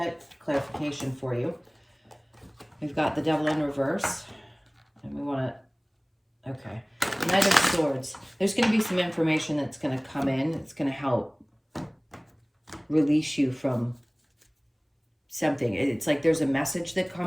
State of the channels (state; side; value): identical; both; correlation 1.00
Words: clarification for you. We've got the Devil in reverse. And we want to, okay. Knight of Swords. There's going to be some information that's going to come in. It's going to help release you from something. It's like there's a message that